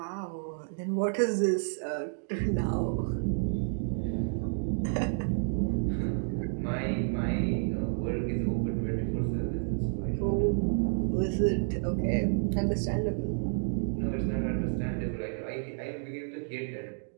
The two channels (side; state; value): left; silent; digital silence